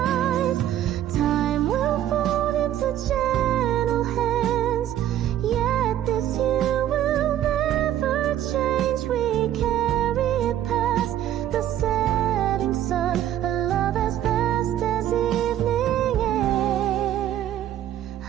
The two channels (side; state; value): left; quieter; 11.7 dB